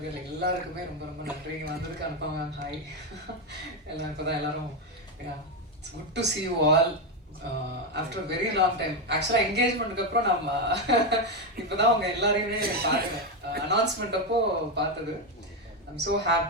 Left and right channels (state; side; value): normal; both; correlation 0.08